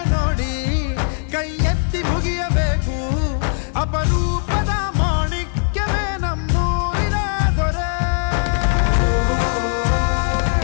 ನೋಡಿ ಕೈ ಎತ್ತಿ ಮುಗಿಯಬೇಕು. ಅಪರೂಪದ ಮಾಣಿಕ್ಯವೇ ನಮ್ಮೂರಿನ ದೊರೆ.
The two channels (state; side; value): silent; right; 66 dB below the other